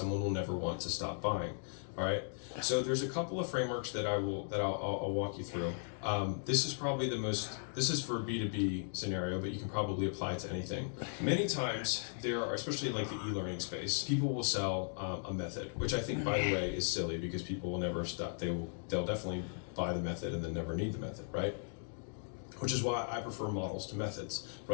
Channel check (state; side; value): silent; right; digital silence